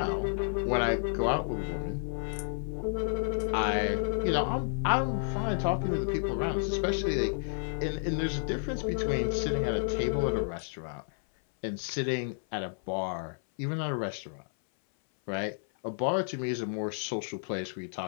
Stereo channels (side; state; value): right; silent; 57 dB below the other